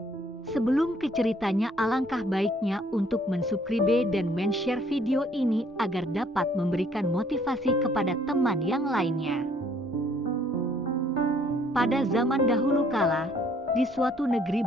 Sebelum ke ceritanya, alangkah baiknya untuk mensubscribe dan men-share video ini agar dapat memberikan motivasi kepada teman yang lainnya. Pada zaman dahulu kala, di suatu negeri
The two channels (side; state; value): both; normal; correlation 0.62